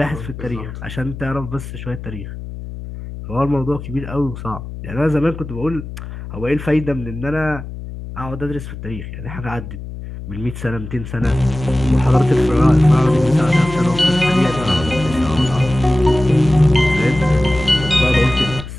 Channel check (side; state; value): left; noise; hum, 10 dB below the sound